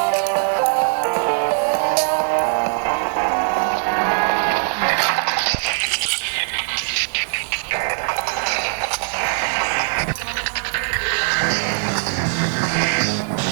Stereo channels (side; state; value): left; silent; digital silence